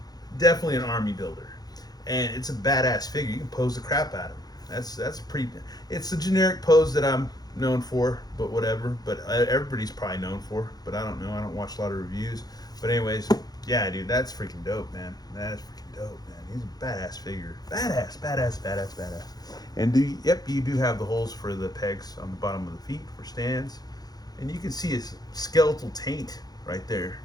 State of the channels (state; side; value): late; right; 0.19 ms